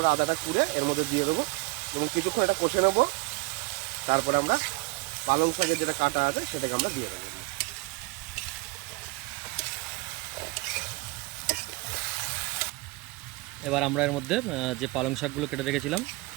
আদাটা কুড়ে এর মধ্যে দিয়ে দেবো এবং কিছুক্ষণ এটা কষে নেবো। তারপরে আমরা পালং শাকের যেটা কাটা আছে সেটাকে আমরা দিয়ে দেবো। এবার আমরা এর মধ্যে যে পালং শাকগুলো কেটে রেখেছিলাম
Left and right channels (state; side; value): quieter; left; 25.1 dB